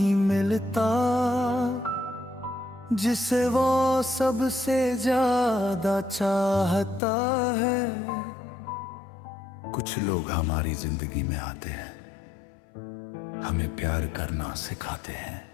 मिलता जिसे वो सबसे ज्यादा चाहता है। कुछ लोग हमारी जिंदगी में आते हैं, हमें प्यार करना सिखाते हैं,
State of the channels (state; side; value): drops out; right; at 7.0 s